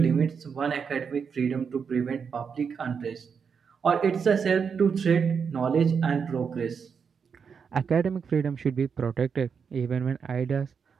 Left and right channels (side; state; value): left; quieter; 6.3 dB